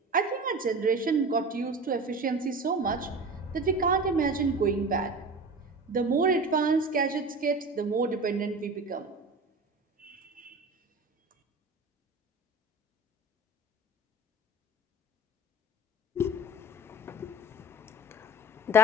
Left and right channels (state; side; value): normal; both; correlation 0.34